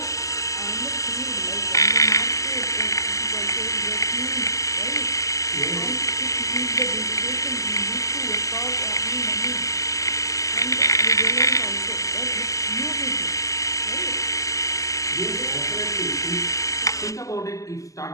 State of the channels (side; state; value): right; late; 0.16 ms